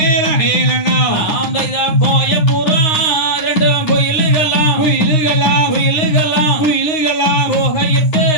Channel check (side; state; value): right; late; 9.7 ms